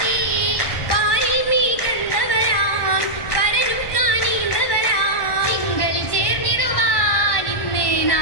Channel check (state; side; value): late; right; 1.1 ms